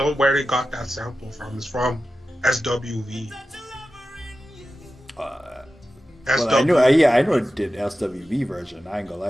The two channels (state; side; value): normal; both; correlation 0.93